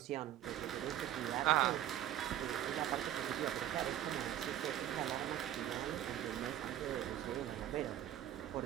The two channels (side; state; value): left; quieter; 11.9 dB